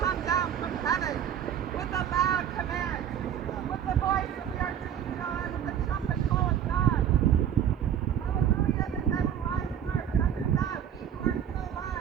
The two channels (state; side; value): quieter; left; 9.4 dB